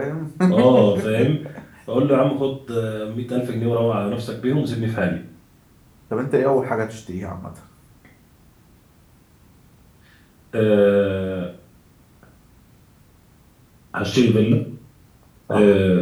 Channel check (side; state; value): both; identical; correlation 1.00